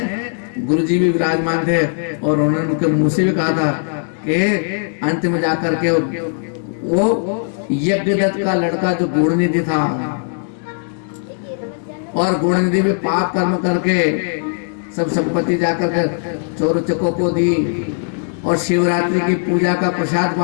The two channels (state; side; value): silent; right; digital silence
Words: गुरुजी भी विराजमान थे और उन्होंने उनके मुंह से भी कहा था कि अंत में जाकर के वो यज्ञदत्त का लड़का जो गुणनिधि था, और गुणनिधि भी पाप कर्म करके सब संपत्ति जाकर के चोर चकों को दी और शिवरात्रि की पूजा का प्रसाद